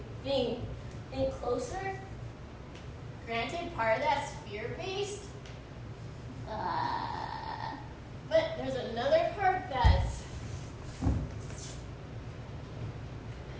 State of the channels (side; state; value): both; identical; correlation 1.00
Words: in closer. Granted, part of that's fear-based, but there's another part that's